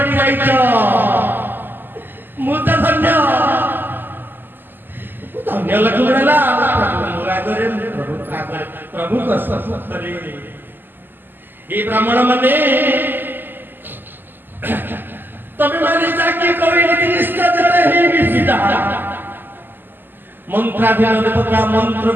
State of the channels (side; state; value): left; late; 0.092 ms